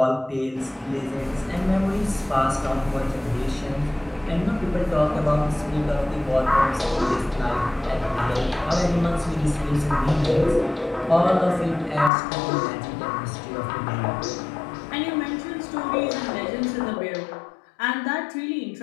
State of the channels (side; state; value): right; drops out; at 12.1 s